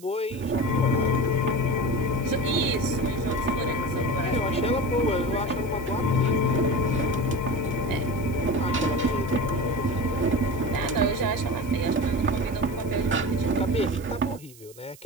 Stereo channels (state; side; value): noise; right; hiss, 22 dB below the sound